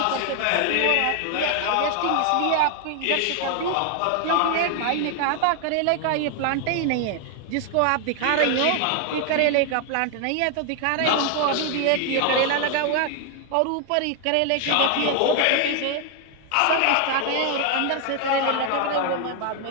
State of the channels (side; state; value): both; different; correlation 0.00